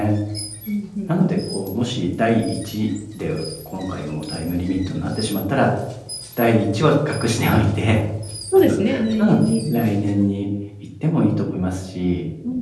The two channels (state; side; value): identical; both; correlation 1.00